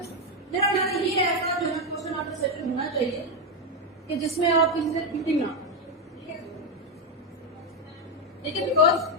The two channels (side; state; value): both; normal; correlation 0.06